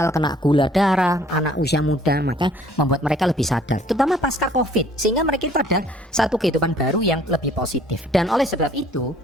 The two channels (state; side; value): normal; both; correlation 0.57